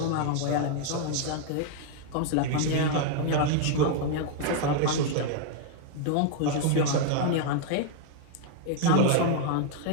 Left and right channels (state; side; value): different; both; correlation 0.00